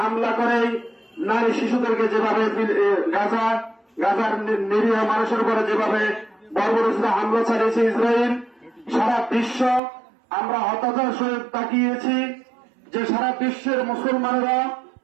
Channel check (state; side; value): drops out; left; at 9.8 s